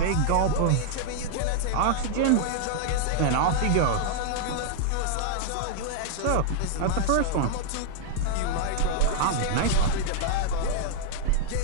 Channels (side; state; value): both; different; correlation -0.01